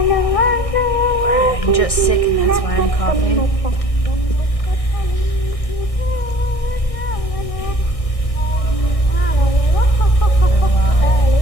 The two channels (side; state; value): right; late; 1.6 ms